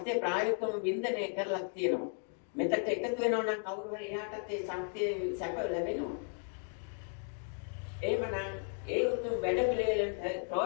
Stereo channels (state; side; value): silent; right; 54 dB below the other